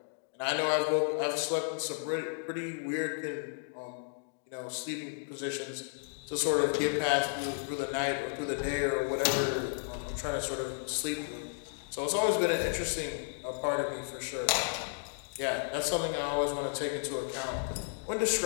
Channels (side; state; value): right; silent; digital silence